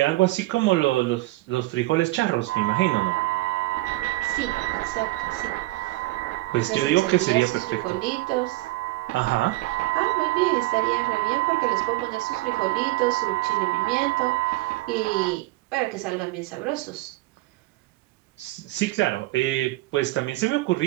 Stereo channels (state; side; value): quieter; left; 19.7 dB